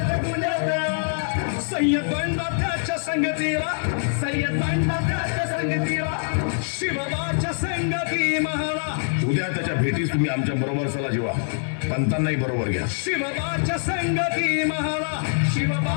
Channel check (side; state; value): right; silent; digital silence